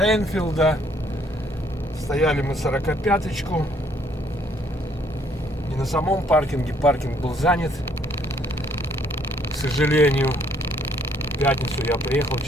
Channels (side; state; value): both; normal; correlation 0.66